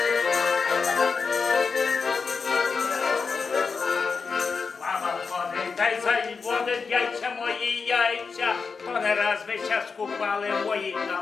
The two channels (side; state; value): right; quieter; 5.1 dB